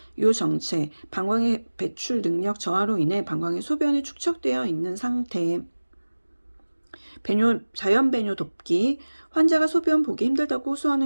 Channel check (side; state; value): both; inverted; correlation -1.00